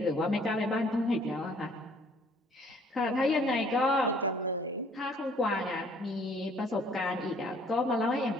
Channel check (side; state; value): both; normal; correlation 0.58